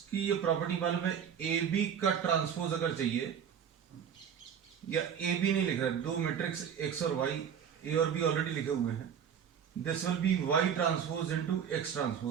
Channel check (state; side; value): quieter; left; 8.0 dB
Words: की ये प्रॉपर्टी मालूम है, ए बी का ट्रांसपोज अगर चाहिए, या ए बी नहीं लिख रहा है, दो मैट्रिक्स x और y, a और b ऑलरेडी लिखे हुए हैं, this will B y transpose into x